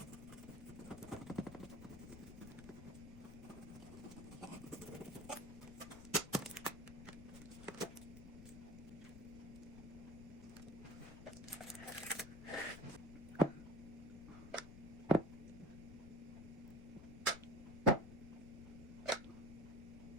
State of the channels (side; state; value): left; noise; rumble, 13 dB below the sound